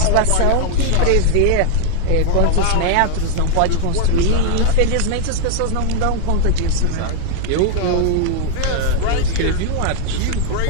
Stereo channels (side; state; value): both; different; correlation -0.01